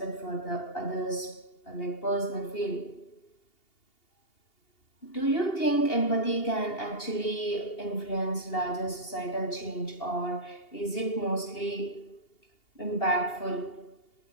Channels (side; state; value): right; late; 2.8 ms